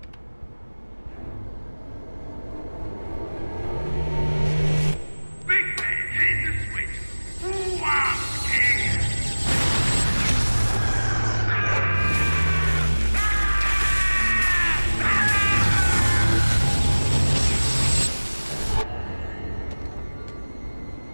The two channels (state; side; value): inverted; both; correlation -1.00